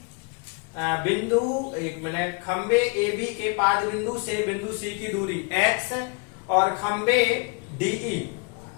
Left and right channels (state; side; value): quieter; right; 33.6 dB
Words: बिंदु, एक मिनट, खंबे ए बी के पाद बिंदु से बिंदु सी की दूरी x और खंबे डीई